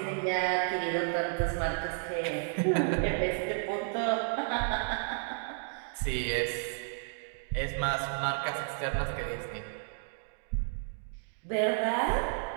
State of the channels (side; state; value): left; silent; 56 dB below the other